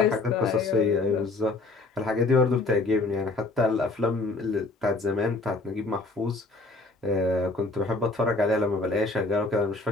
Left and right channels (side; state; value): right; quieter; 3.3 dB